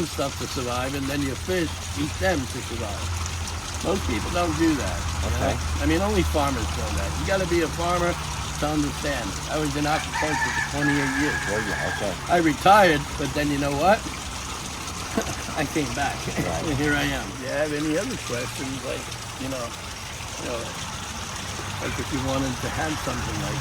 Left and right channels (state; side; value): identical; both; correlation 1.00